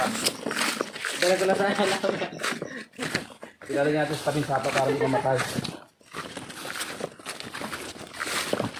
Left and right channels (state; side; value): identical; both; correlation 1.00